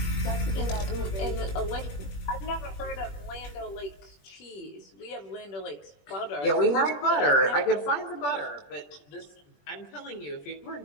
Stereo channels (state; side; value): late; right; 21 ms